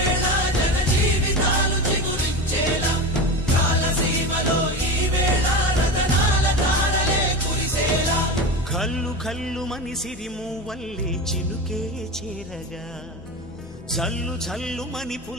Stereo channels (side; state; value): both; normal; correlation 0.24